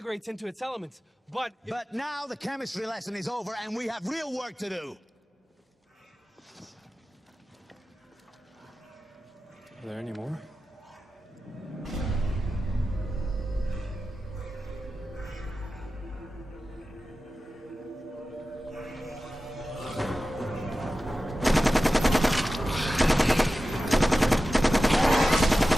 into its elements, but... But now the chemistry lesson is over and we have real work to do. Are there any more?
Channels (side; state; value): both; normal; correlation 0.94